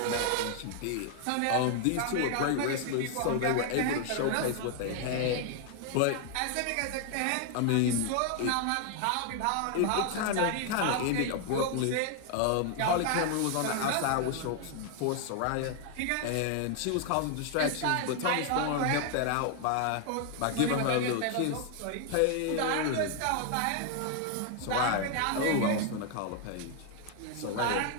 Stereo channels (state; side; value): different; both; correlation 0.00